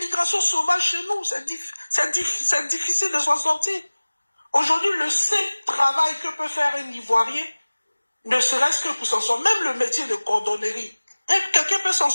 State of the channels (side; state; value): both; inverted; correlation -1.00